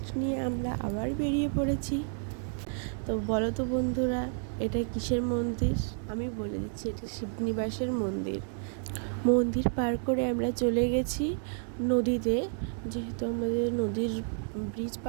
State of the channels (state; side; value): silent; left; 57 dB below the other